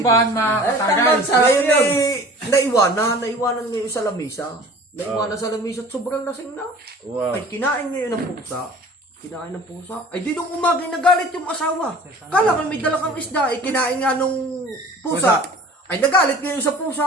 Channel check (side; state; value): both; normal; correlation 0.44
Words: mga Tamban tagay. sa ngayon naiwanan niya yung sa lamisa. Naiwanan sa lamisa at sobrang lasing na. Wow. Ay, kinain niya yun ng pusa. Ay, di nung umaga nagalit yung asawa. Kala ko may dala kang isda, kinain nga nung pusa. Ay, nagalit ngayon sa